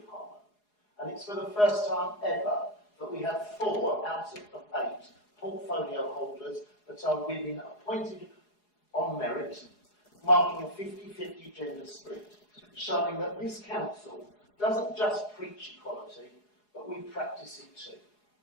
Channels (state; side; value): late; right; 4.8 ms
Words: Harlow. And it's for the first time ever that we have 4 out of 8 portfolio holders that are women appointed on merit, marking a 50-50 gender split, showing that this council doesn't just preach equality, but we practice it too.